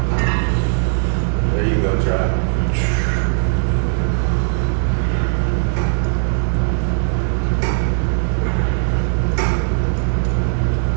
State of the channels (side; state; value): left; silent; digital silence